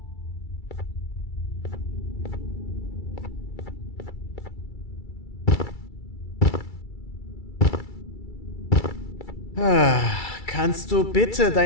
Kannst du bitte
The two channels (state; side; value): late; right; 2.3 ms